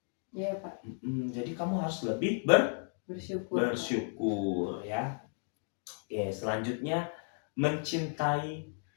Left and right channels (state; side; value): silent; right; 55 dB below the other